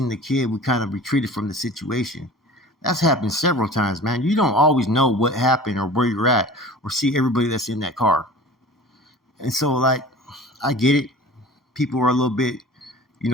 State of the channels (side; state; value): both; normal; correlation 0.40